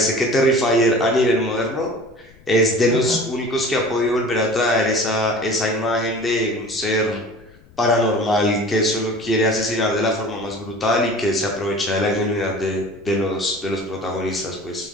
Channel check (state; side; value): noise; left; rumble, 27 dB below the sound